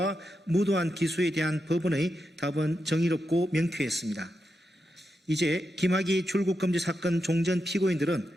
무도한 기소에 대한 법원의 답은 정의롭고 명쾌했습니다. 이제 김학의 출국금지 사건 종전 피고인들은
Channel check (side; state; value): both; normal; correlation 0.87